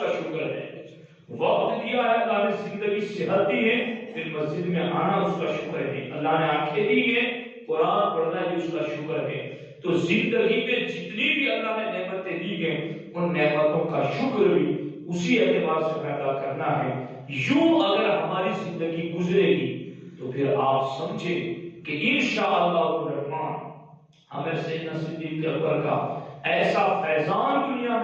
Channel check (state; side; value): identical; both; correlation 1.00